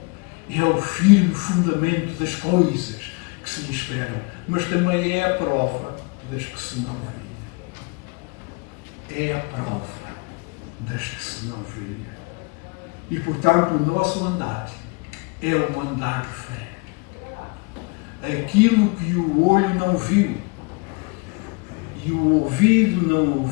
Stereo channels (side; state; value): right; quieter; 30.1 dB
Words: é o firme fundamento das coisas que se lhe esperam, mas também é a prova das que se não veem. É a prova das que se não veem. E, portanto, o nosso andar é um andar de fé. Aquilo que o olho não viu e o ouvido não